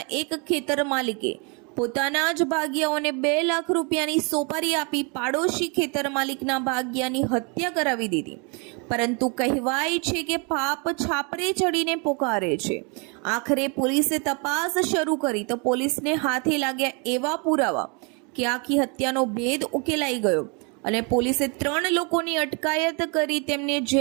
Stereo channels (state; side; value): quieter; left; 33.2 dB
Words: એક ખેતર માલિકે પોતાના જ ભાગિયાઓને 2 લાખ રૂપિયાની સોપારી આપી પાડોશી ખેતર માલિકના ભાગિયાની હત્યા કરાવી દીધી। પરંતુ કહેવાય છે કે પાપ છાપરે ચડીને પોકારે છે। આખરે પોલીસે તપાસ શરૂ કરી તો પોલીસને હાથે લાગ્યા એવા પુરાવા કે આખી હત્યાનો ભેદ ઉકેલાઈ ગયો અને પોલીસે 3 લોકોની અટકાયત કરી તેમને